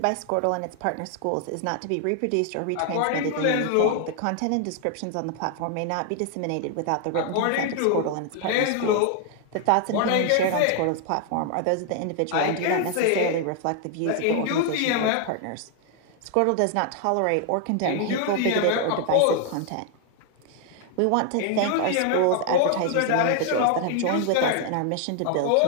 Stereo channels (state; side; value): different; both; correlation 0.00